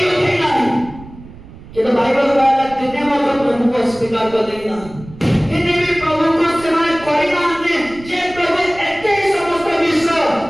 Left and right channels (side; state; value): right; noise; rumble, 18 dB below the sound